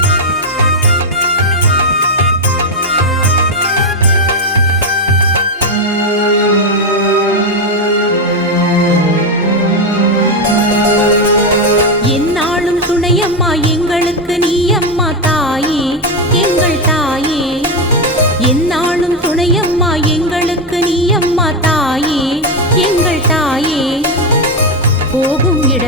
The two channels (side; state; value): both; normal; correlation 0.07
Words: எங்களுக்கு நீ அம்மா தாயே எங்கள் தாயே எந்நாளும் துணையம்மா எங்களுக்கு நீ அம்மா தாயே எங்கள் தாயே போகும்